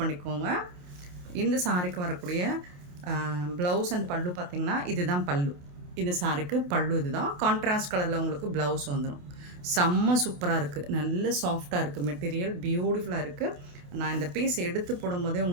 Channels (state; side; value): late; left; 28 ms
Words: இந்த சாரிக்கு வரக்கூடிய ப்ளவுஸ் அண்ட் பல்லு பார்த்திங்கன்னா இதுதான் பல்லு. இந்த சாரிக்கு பல்லு இதுதான். கான்ட்ராஸ்ட் கலரில் உங்களுக்கு ப்ளவுஸ் வந்துடும். செம்ம சூப்பராக இருக்குது. நல்ல சாஃப்டாக இருக்குது. மெட்டீரியல் பியூட்டிஃபுல்லாக இருக்குது. நான் இந்த பீஸ் எடுத்து போடும்போதே